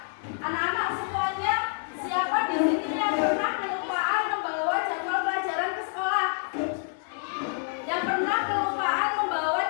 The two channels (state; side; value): silent; right; 60 dB below the other